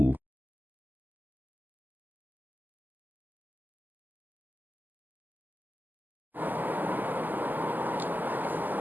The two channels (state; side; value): late; left; 0.086 ms